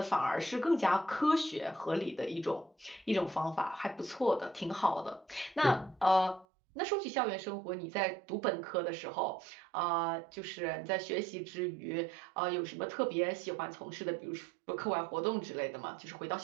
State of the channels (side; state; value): left; drops out; at 6.5 s